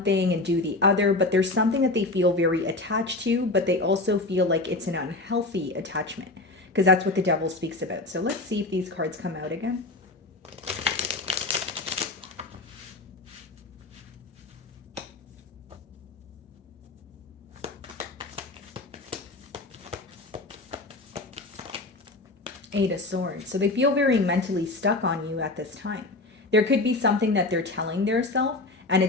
thing and do the other, but there's something that they feel very attached to, but they also feel like it's an unhealthy attachment, because that's what the Devil speaks about. So let's see if these cards come out again. Eight of Swords. So they feel very mentally stuck on you at this time. There could be something that they're telling theirself and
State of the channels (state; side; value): quieter; right; 3.0 dB